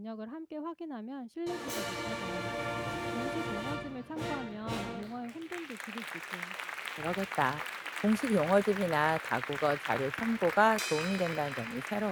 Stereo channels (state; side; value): identical; both; correlation 1.00